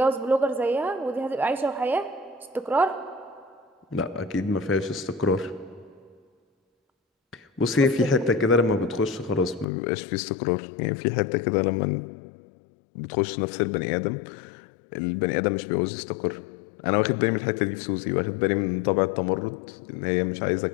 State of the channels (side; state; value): right; drops out; at 9.7 s